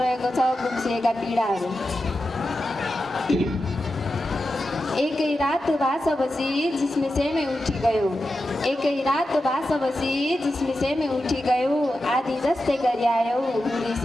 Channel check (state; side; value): normal; both; correlation 0.91